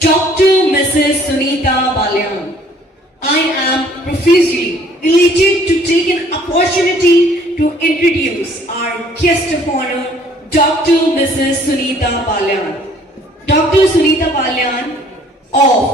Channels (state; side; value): normal; both; correlation 0.58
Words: Mrs. Sunita Balyan. I am profusely elated to take an opportunity to introduce our guest of honor, Dr. Mrs. Sunita Balyan. Dr. Sunita Balyan